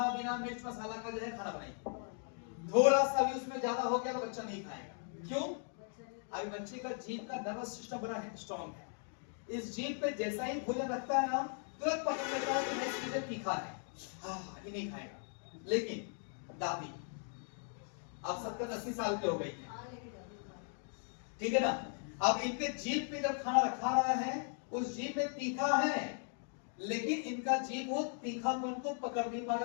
बिना मिर्च मसाला का जो है खाना बनाइए। थोड़ा सा भी उसमें ज्यादा हो गया तो बच्चा नहीं खाएगा। क्यों? अभी बच्चे का जीभ का नर्वस सिस्टम बड़ा है, स्ट्रॉन्ग है। इस जीभ पे जैसा ही भोजन रखता है ना, तुरंत पकड़ लेता है कि मैं इसके लिए तीखा है, ये नहीं खाएगा। लेकिन दादी अब 70-80 साल के हो गई है, ठीक है ना, अब इनके जीभ पे जब खाना रखा रहा है, उस जीभ में तीखा है, लेकिन इनका जीभ वो तीखापन को पकड़ नहीं पा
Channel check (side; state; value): right; silent; 52 dB below the other